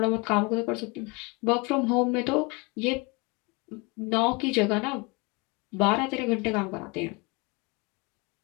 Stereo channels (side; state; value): right; quieter; 27.8 dB